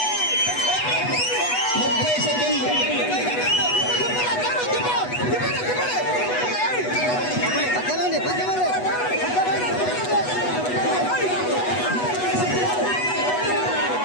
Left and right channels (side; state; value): right; late; 8.1 ms